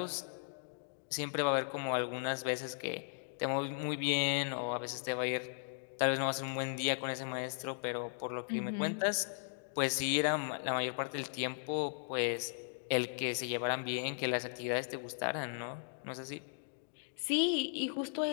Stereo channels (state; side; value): silent; right; digital silence